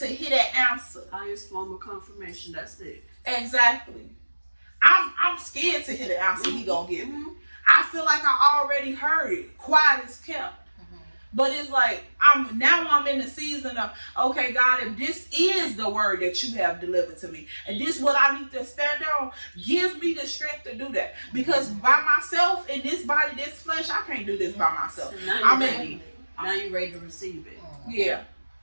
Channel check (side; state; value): both; inverted; correlation -1.00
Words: hear that answer. Highest form of confirmation. That's it. Exactly. I'm scared to hear the answer he gonna give me. I feel like I already heard it. Quiet as kept. But it's like I'm in the season of, okay, God, if this is the word that you have delivered to me, and this is what I need to stand on, give me the strength to do that. Because by myself in this body, this flesh, I can't do this by myself. So now you're ready. Now you're ready to receive it. Yeah.